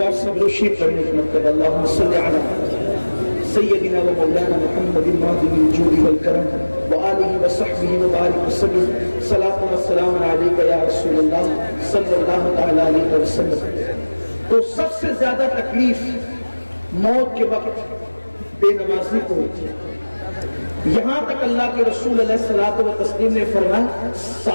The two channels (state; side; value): inverted; both; correlation -1.00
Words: سب لوگ شیخ پڑھنے کا مطلب اللہم صلی علی سیدنا و مولانا محمد الماضی الجود والکرم وآلہ وصحبہ وبارک وسلم. صلاۃ و سلام علیک یا رسول اللہ صلی اللہ تعالی علیہ وسلم. تو سب سے زیادہ تکلیف موت کے وقت بے نمازی کو ہوتی ہے. یہاں تک اللہ کے رسول علیہ الصلوۃ والتسلیم نے فرمایا